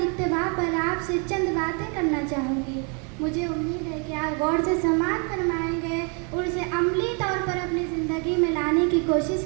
اتباع پر آپ سے چند باتیں کرنا چاہوں گی۔ مجھے امید ہے کہ آپ غور سے سماعت فرمائیں گے اور اسے عملی طور پر اپنی زندگی میں لانے کی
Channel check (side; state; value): left; quieter; 36.4 dB